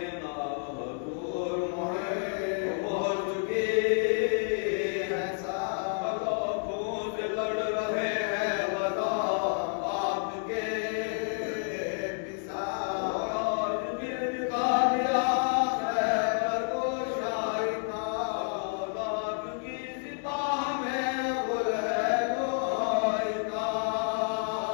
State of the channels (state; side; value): silent; right; 55 dB below the other